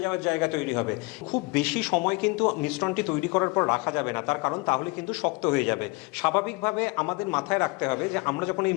যাওয়ার জায়গা তৈরি হবে। খুব বেশি সময় কিন্তু মিশ্রণটি তৈরি করার পর রাখা যাবে না, তার কারণ তাহলে কিন্তু শক্ত হয়ে যাবে। স্বাভাবিকভাবে আমাদের মাথায় রাখতে হবে যে আমরা যখন এই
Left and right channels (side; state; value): right; quieter; 26.5 dB